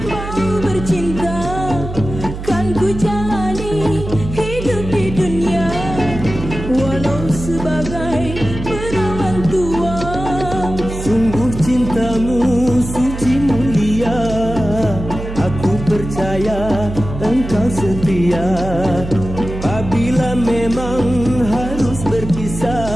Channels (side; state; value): right; noise; hum, 8 dB below the sound